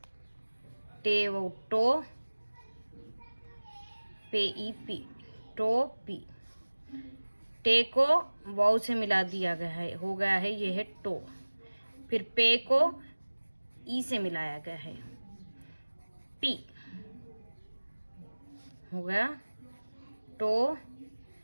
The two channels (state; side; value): inverted; both; correlation -1.00